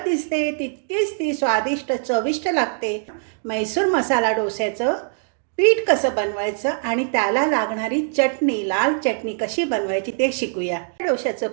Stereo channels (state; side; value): silent; left; digital silence